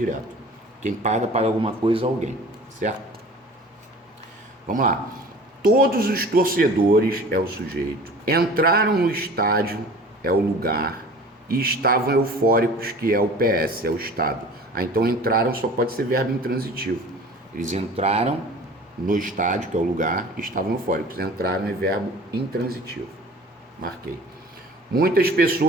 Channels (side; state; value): both; normal; correlation 0.43